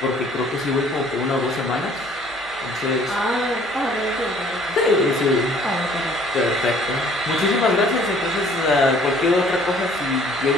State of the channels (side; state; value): both; normal; correlation 0.56